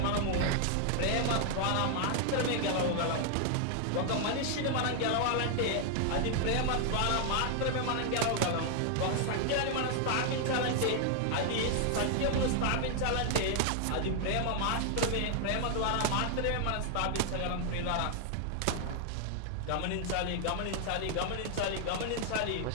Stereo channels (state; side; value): different; both; correlation 0.00